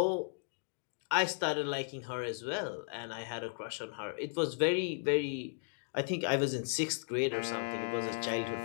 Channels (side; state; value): right; silent; digital silence